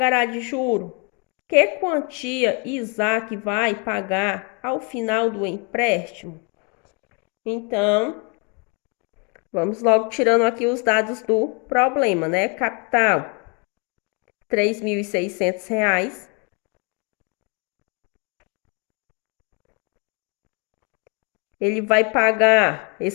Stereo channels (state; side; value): quieter; right; 34.1 dB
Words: de juro? Que quantia Isaac vai pagar ao final do empréstimo? Então, vamos logo tirando aqui os dados do problema, né? Capital, R$ 3.600. Ele vai pagar